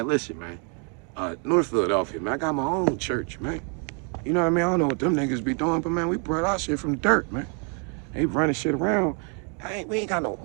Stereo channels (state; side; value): quieter; left; 38.5 dB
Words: listen, man. North Philadelphia, man. I got my own church, man. You know what I mean? I don't know what them niggas be doing, but man, we brought our shit from the dirt, man. They running shit around. We ain't got no